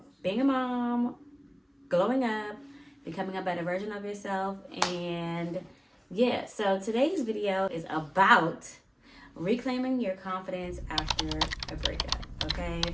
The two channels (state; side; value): identical; both; correlation 1.00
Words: being a mom, glowing up, becoming a better version of yourself. And yeah, so today's video is about reclaiming your confidence after a breakup, okay?